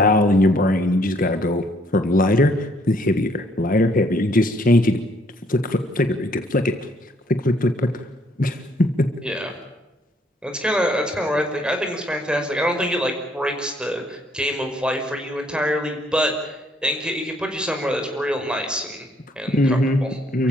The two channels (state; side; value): normal; both; correlation 0.66